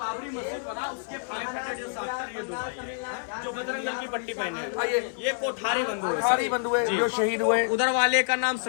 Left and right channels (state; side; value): silent; right; 60 dB below the other